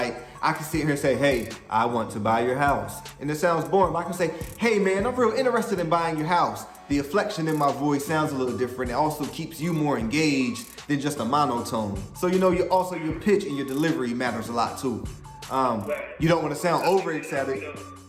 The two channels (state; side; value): identical; both; correlation 1.00